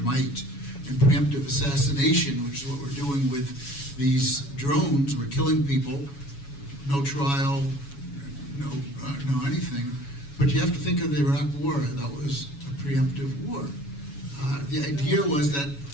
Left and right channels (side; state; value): right; late; 7.1 ms